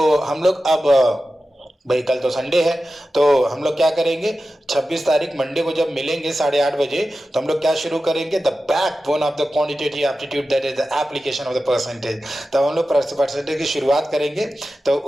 हम लोग अब भाई कल तो संडे है, तो हम लोग क्या करेंगे, 26 तारीख मंडे को जब मिलेंगे 8:30 बजे, तो हम लोग क्या शुरू करेंगे, the backbone of the quantitative aptitude, that is the application of the percentage. तब हम लोग परसेंटेज की शुरुआत करेंगे, तो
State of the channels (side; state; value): both; normal; correlation 0.93